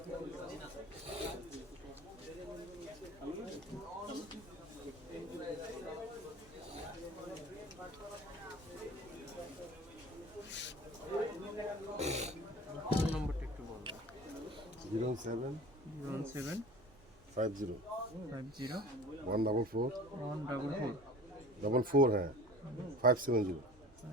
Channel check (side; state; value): both; normal; correlation 0.40